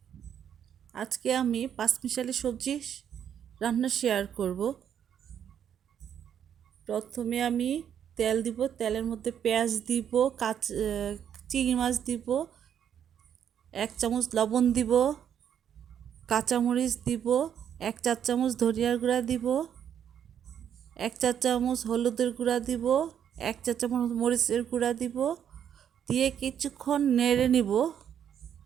আজকে আমি পাঁচমিশালি সবজি রান্না শেয়ার করব। প্রথমে আমি তেল দিব, তেলের মধ্যে পেঁয়াজ দিব, চিংড়ি মাছ দিব, 1 চামচ লবণ দিব, কাঁচামরিচ দিব, 1 চা চামচ ধনিয়ার গুঁড়া দিব, 1 চা চামচ হলুদের গুঁড়া দিব, 1 চা চামচ মরিচের গুঁড়া দিব, দিয়ে কিছুক্ষণ নেড়ে নিব।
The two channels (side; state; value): left; quieter; 9.0 dB